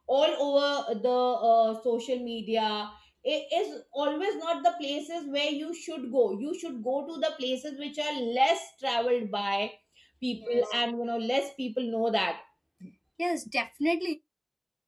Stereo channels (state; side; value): identical; both; correlation 1.00